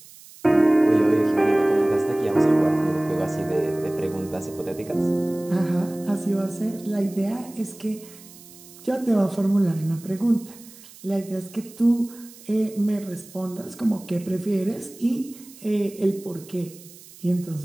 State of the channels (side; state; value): right; noise; hiss, 20 dB below the sound